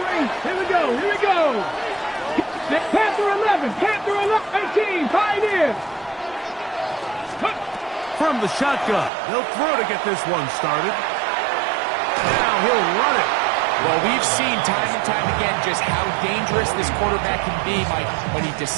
Here we go, here we go. Panther 11, Panther 18, Pioneers. From the shotgun, they'll throw to get this one started. Now he'll run it. Well, we've seen time and time again just how dangerous this quarterback can be, Mike, when he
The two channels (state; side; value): drops out; left; at 9.1 s